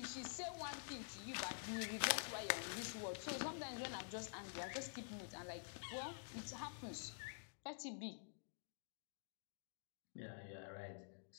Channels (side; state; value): right; silent; digital silence